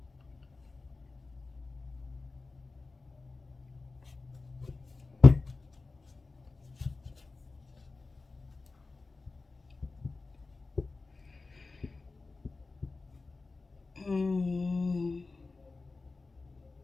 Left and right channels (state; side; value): quieter; right; 3.7 dB